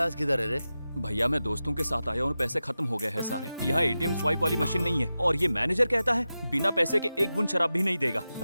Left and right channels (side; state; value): both; inverted; correlation -0.93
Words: किधर है रे? भैया मैं दोस्तों के साथ आया और पैसे खत्म हो गए हैं सारे। यहाँ एटीएम स्वाइप वाली मशीन नहीं है और ये मैनेजर कहता है बिना पैसे के एक बूंद शराब भी नहीं देगा।